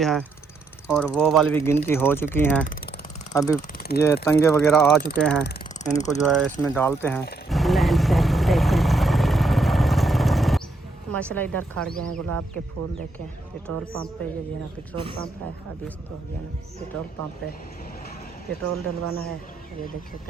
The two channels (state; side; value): quieter; left; 3.3 dB